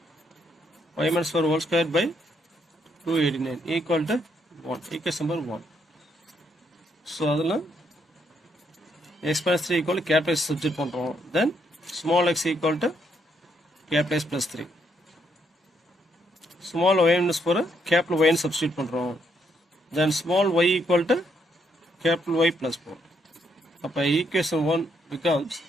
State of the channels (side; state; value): both; normal; correlation 0.74